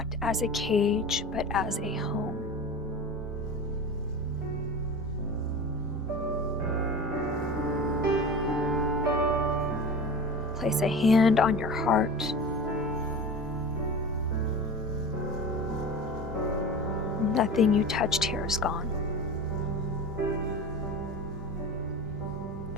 as a cage, but as a home. Place a hand on your heart. Nothing you touched here is gone.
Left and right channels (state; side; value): normal; both; correlation 0.32